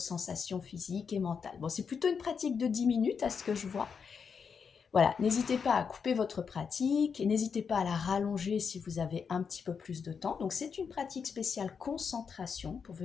physiques et mentales. Bon, c'est plutôt une pratique de 10 minutes à ce que je vois. Voilà, n'hésitez pas à couper votre pratique et n'hésitez pas à la rallonger si vous avez un petit peu plus de temps. Donc, c'est une pratique spéciale concentration pour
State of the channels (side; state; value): right; quieter; 6.2 dB